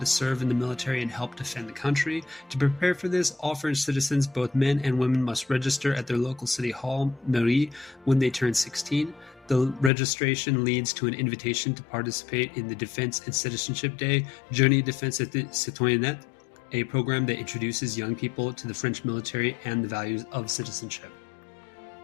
serve in the military and help defend the country. To prepare for this, all French citizens, both men and women, must register at their local city hall, mairie, when they turn 16. The registration leads to an invitation to participate in the Defense and Citizenship Day, Journée Défense et Citoyenneté, a program that introduces young people to the French military and the values of citizenship.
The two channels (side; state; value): right; drops out; at 9.9 s